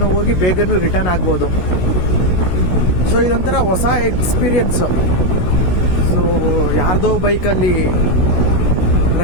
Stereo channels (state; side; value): late; right; 16 ms